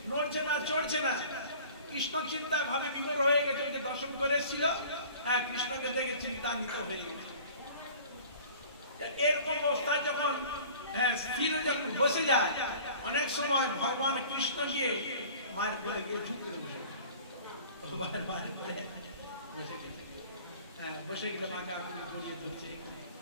নড়ছে না চড়ছে না, কৃষ্ণ চিন্তায় ভাবে বিভোর হয়ে গেছে। ওকে দর্শন করে এসেছিল, হ্যাঁ কৃষ্ণকে দেখে চিন্তান্বিত হয়ে গেছে। এরকম অবস্থায় যখন স্থির যখন বসে যায়, অনেক সময় ভগবান কৃষ্ণ গিয়ে মায়ের কোলে গিয়ে ঝুঁক করে বসে, মায়ের কোলে বসে গেছে। বসে গেলে মাকে আপনি গড়িয়ে ধরছে,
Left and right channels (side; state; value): both; inverted; correlation -0.46